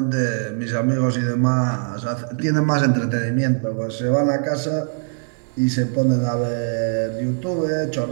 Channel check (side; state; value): left; silent; 61 dB below the other